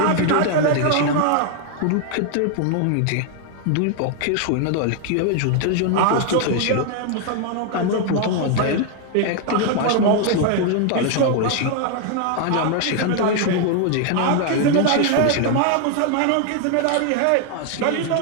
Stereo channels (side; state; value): both; different; correlation 0.01